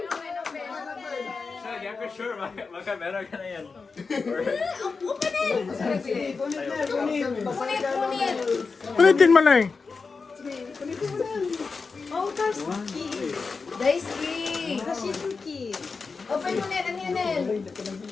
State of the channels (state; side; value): quieter; right; 4.6 dB